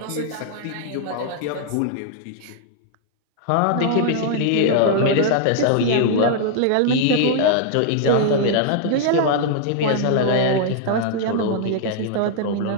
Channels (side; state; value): both; different; correlation -0.01